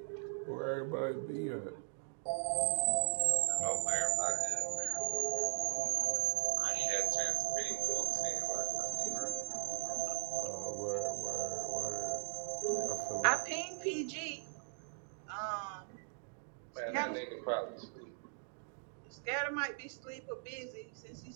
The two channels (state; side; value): silent; left; digital silence